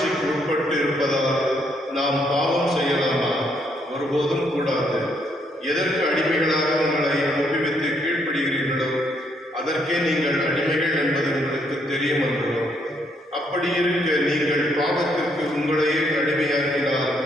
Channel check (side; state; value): both; normal; correlation 0.72